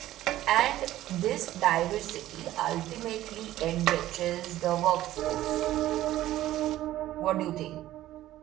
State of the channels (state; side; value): quieter; left; 14.4 dB